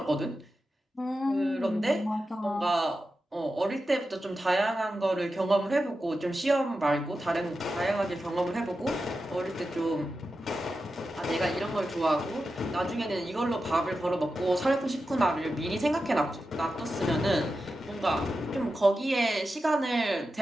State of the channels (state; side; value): normal; both; correlation 0.91